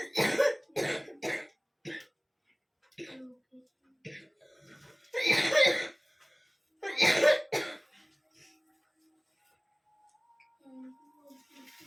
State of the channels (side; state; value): both; identical; correlation 1.00